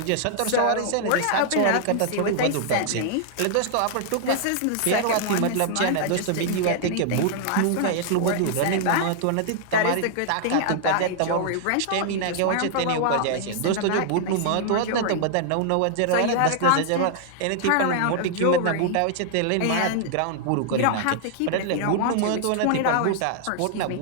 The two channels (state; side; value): different; both; correlation -0.01